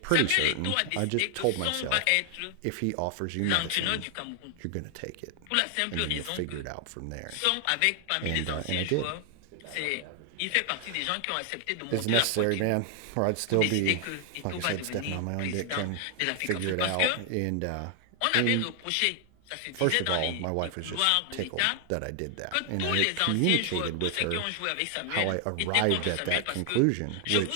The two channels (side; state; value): both; different; correlation 0.00